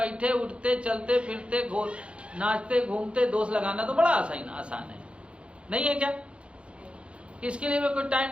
उठते चलते फिरते नाचते घूमते दोष लगाना तो बड़ा आसान है, नहीं है क्या? इसके लिए कोई टाइम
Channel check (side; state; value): left; late; 0.059 ms